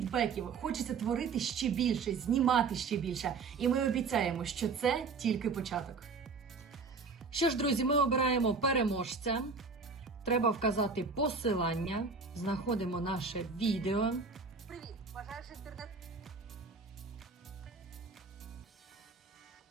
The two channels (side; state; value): left; quieter; 4.6 dB